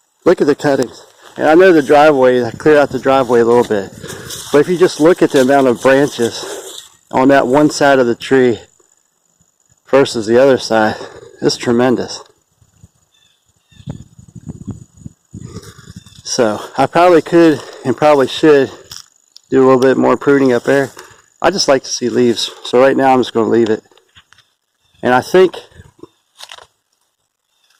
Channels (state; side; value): identical; both; correlation 1.00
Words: Look at the cuttings. And I know the driveway, I cleared out the driveway a little bit. But if you just look at the amount of branches on that one side of the tree versus the other side, it's tremendous. So I probably could and probably should do a little bit more pruning up there. I just like to see leaves. So right now I'm just going to leave it. And I think